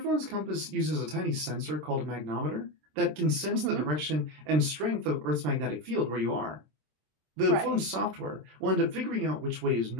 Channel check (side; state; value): left; late; 26 ms